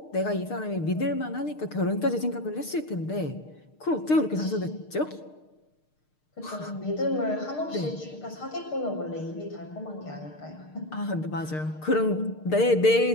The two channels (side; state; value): right; late; 6.6 ms